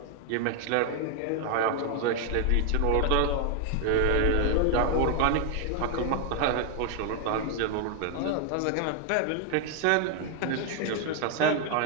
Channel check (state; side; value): different; both; correlation 0.00